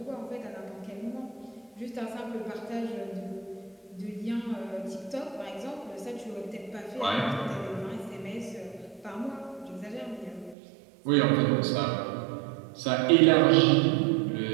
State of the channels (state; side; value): drops out; left; at 10.6 s